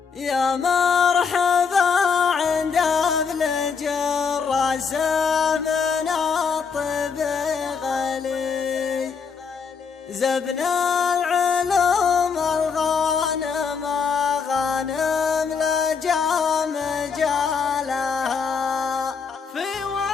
يا مرحبا عند ابن جراس من الطب غلي زبن العلوم الغانم غانم لجام جالها في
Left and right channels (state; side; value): quieter; right; 5.8 dB